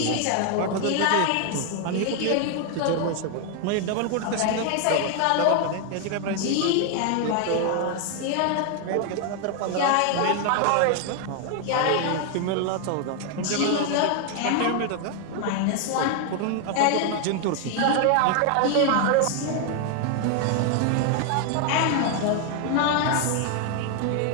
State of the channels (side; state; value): both; different; correlation 0.00